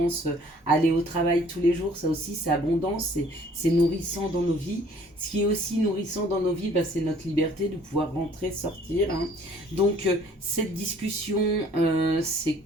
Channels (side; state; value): both; normal; correlation 0.56